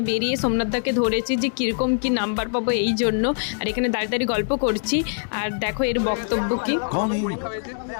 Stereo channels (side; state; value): right; silent; 63 dB below the other